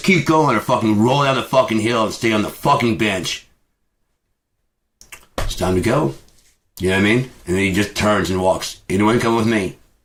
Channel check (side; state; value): both; identical; correlation 1.00